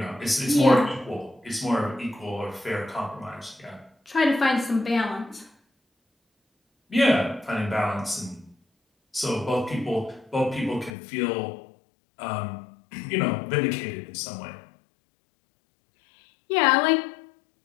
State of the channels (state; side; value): drops out; right; at 11.0 s